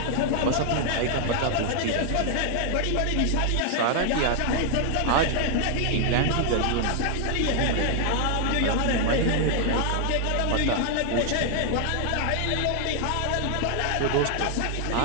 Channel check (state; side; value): different; both; correlation 0.00